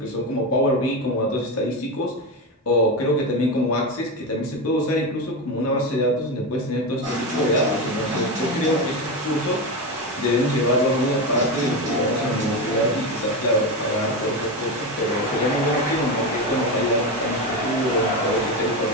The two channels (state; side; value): normal; both; correlation 0.16